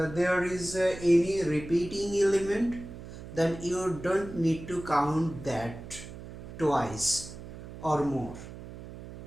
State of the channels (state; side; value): noise; right; hum, 13 dB below the sound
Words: is any repeating element, then you don't need to count that twice or more,